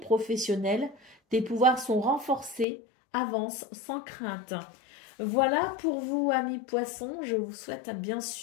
Tes pouvoirs sont renforcés. Avance sans crainte. Voilà pour vous, amis poissons. Je vous souhaite bien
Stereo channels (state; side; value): drops out; right; at 2.7 s